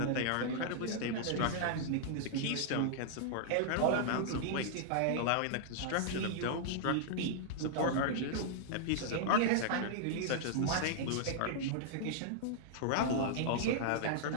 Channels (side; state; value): both; different; correlation -0.01